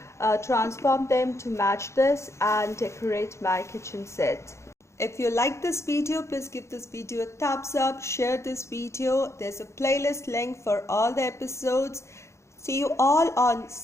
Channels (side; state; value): right; late; 0.14 ms